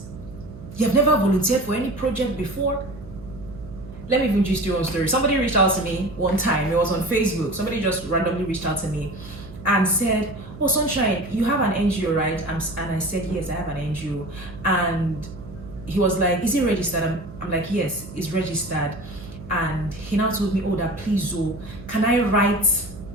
You have never volunteered for any project before. Let me even just do one story. Somebody reached out to me one time. It was on Facebook. Somebody just randomly reached out to me and said, "Oh, Sunshine, you have an NGO, right?" And I said, "Yes, I have an NGO." And he was like, "Is it registered?" I'm like, "Yes, it's registered." And he now told me, "Oh, that please, can I write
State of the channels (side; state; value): right; noise; hum, 16 dB below the sound